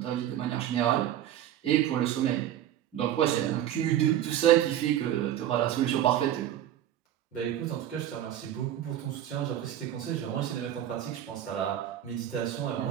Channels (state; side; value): quieter; left; 11.5 dB